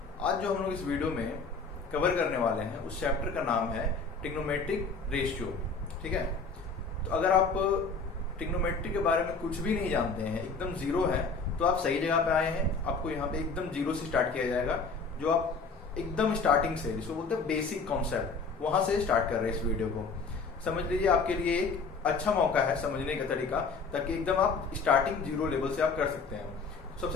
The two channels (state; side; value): quieter; right; 4.5 dB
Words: आज जो हम लोग इस वीडियो में कवर करने वाले हैं उस चैप्टर का नाम है ट्रिग्नोमेट्रिक रेशियो। ठीक है, तो अगर आप ट्रिग्नोमेट्री के बारे में कुछ भी नहीं जानते हैं, एकदम जीरो है, तो आप सही जगह पे आए हैं। आपको यहाँ पे एकदम जीरो से स्टार्ट किया जाएगा, जो आप एकदम स्टार्टिंग से, जिसको बोलते हैं बेसिक कॉन्सेप्ट, वहां से स्टार्ट कर रहे हैं इस वीडियो को। समझ लीजिए आपके लिए एक अच्छा मौका है समझने का तरीका, ताकि एकदम आप स्टार्टिंग जीरो लेवल से आप कर सकते हैं।